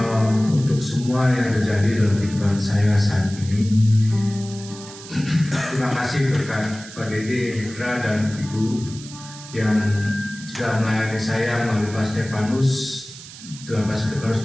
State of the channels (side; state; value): right; noise; hiss, 16 dB below the sound